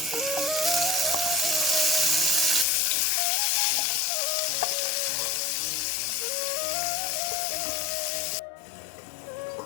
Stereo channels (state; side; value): drops out; right; at 2.7 s